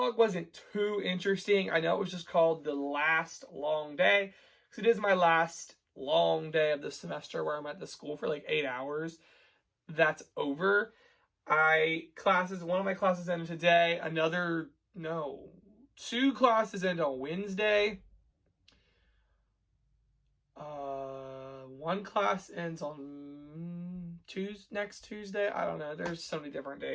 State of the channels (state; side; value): identical; both; correlation 1.00